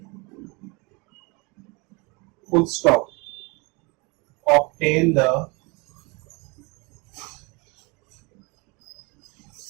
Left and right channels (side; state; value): left; quieter; 28.5 dB